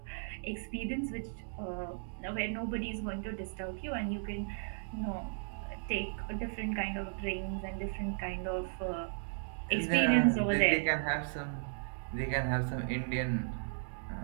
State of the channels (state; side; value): silent; left; digital silence